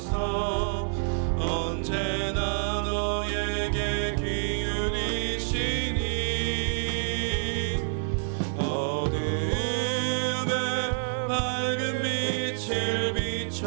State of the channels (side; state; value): left; silent; 59 dB below the other